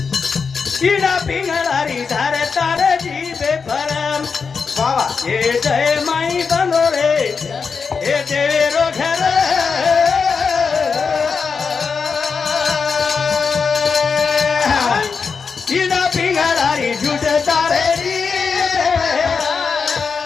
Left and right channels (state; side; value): quieter; right; 5.4 dB